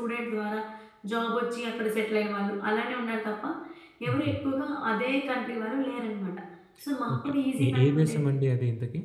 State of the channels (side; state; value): both; identical; correlation 1.00